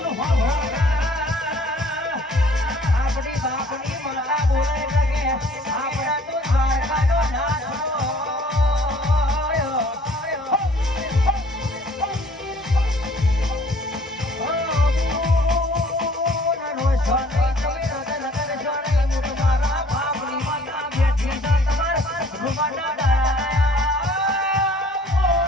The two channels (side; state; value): both; normal; correlation 0.55